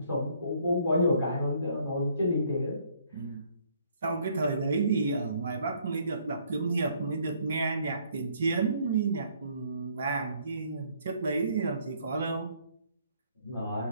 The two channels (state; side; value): inverted; both; correlation -0.65